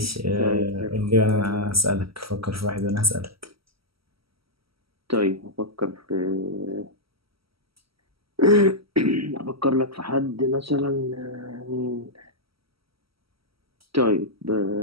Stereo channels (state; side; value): late; left; 0.75 ms